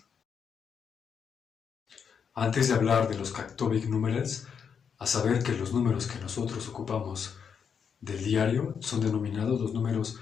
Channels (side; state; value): right; quieter; 6.9 dB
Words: Antes de hablar de los Cacobic numerals, a saber que los números que nosotros ocupamos del diario son denominados los números